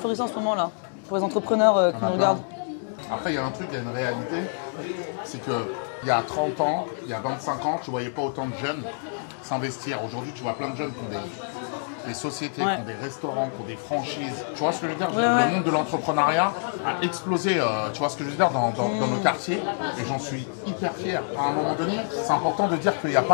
en ce moment là? Pour les entrepreneurs Il y en a plein. Après, il y a un truc, il y a une réalité, c'est qu'il y a 30 ans, il y a 25 ans, tu ne voyais pas autant de jeunes s'investir. Aujourd'hui, tu vois plein de jeunes qui ont des sociétés, qui ont des restaurants, qui ont des franchises. Tu vois ce que je veux dire? Le monde de l'entrepreneuriat a explosé, tu vois ce que je veux dire, dans nos quartiers. Et j'en suis hyper fier. À un moment donné, c'est important de dire qu'il n'y a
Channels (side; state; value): right; silent; digital silence